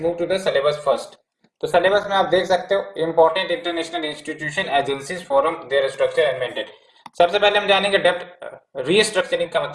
to the syllabus first. तो सिलेबस में आप देख सकते हो important international institution agencies forum their structure and maintain. सबसे पहले हम जानेंगे डेब्ट रीस्ट्रक्चरिंग का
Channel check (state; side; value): identical; both; correlation 1.00